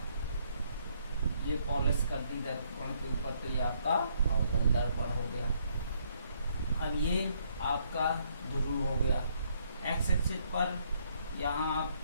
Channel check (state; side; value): inverted; both; correlation -0.69